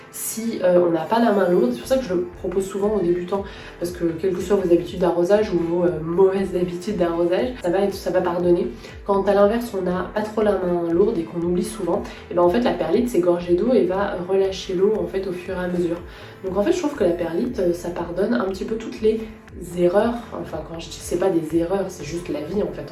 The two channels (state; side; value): identical; both; correlation 1.00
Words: si on n'a pas la main lourde, c'est pour ça que je le propose souvent aux débutants, parce que quelles que soient vos habitudes d'arrosage ou vos mauvaises habitudes d'arrosage, ça va pardonner. Quand à l'inverse on n'a pas trop la main lourde et qu'on oublie souvent, et ben en fait la perlite c'est gorgé d'eau et va relâcher l'eau en fait au fur et à mesure. Donc en fait je trouve que la perlite ça pardonne un petit peu toutes les erreurs, enfin quand je dis c'est pas des erreurs, c'est juste la vie en fait,